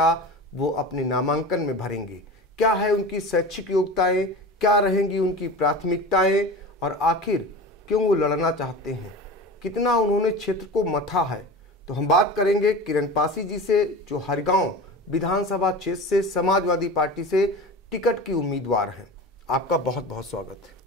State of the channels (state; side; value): normal; both; correlation 0.32